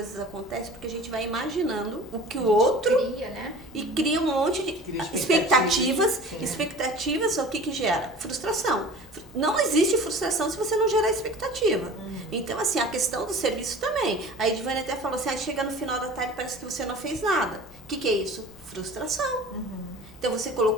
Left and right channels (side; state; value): both; normal; correlation 0.41